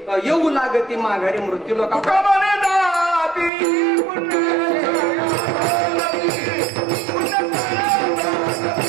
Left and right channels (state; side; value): drops out; left; at 3.5 s